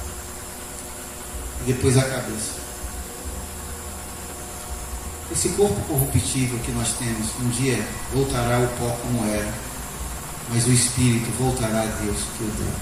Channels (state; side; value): identical; both; correlation 1.00